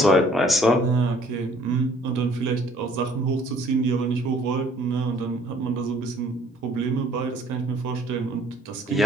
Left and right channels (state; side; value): normal; both; correlation 0.57